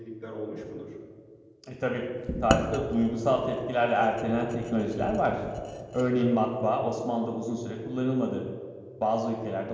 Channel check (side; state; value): both; identical; correlation 1.00